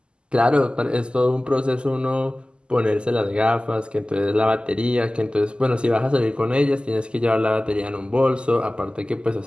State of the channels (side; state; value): left; late; 0.050 ms